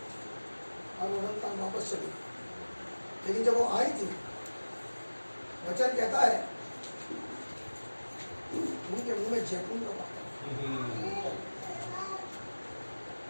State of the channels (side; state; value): both; inverted; correlation -1.00